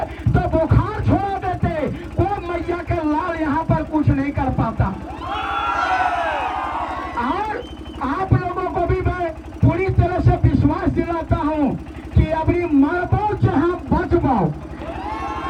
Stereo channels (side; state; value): both; identical; correlation 1.00